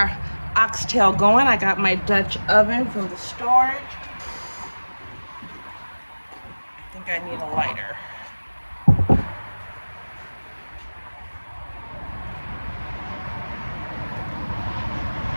oxtail going. I got my Dutch oven from the storage. I think I need a lighter.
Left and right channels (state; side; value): inverted; both; correlation -1.00